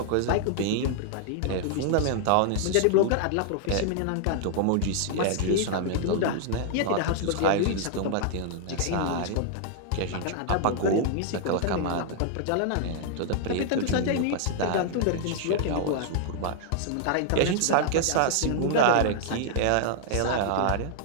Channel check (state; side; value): different; both; correlation -0.01